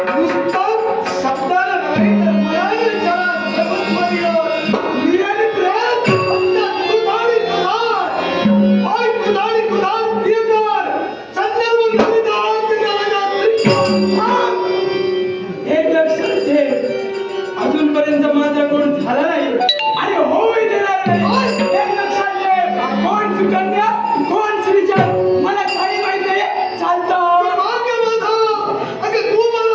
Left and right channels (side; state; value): both; identical; correlation 1.00